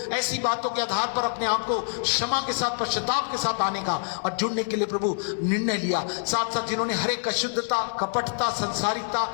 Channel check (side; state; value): right; silent; 60 dB below the other